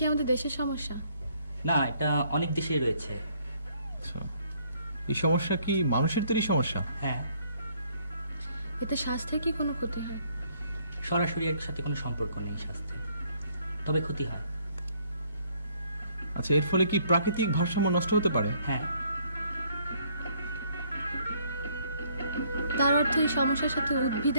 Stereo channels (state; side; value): inverted; both; correlation -0.65